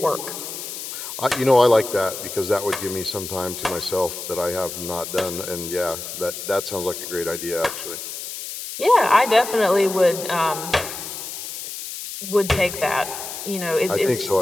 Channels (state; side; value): noise; left; hiss, 8 dB below the sound